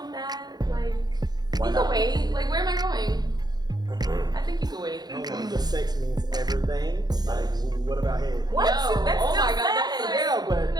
that. Like, Why you not? can wait. Like, where am I going? I think you can wait. The sex means everything. Like, what about head? What? No. That's Oh still my God, sex. that's Yeah, but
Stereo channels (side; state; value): left; late; 0.19 ms